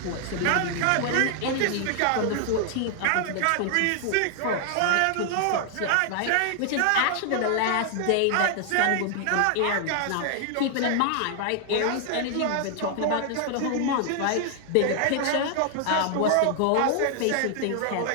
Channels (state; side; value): different; both; correlation 0.00